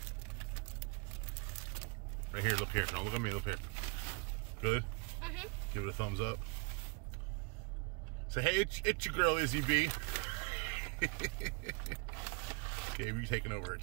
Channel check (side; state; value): left; quieter; 29.7 dB